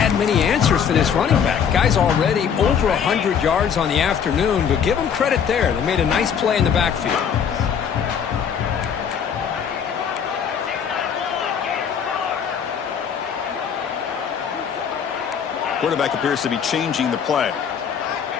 many answers for this running back. Guy's already over 100 yards on the afternoon, but give them credit there. They made a nice play in the backfield. Quarterback appears to be changing the play.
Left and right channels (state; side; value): quieter; right; 7.5 dB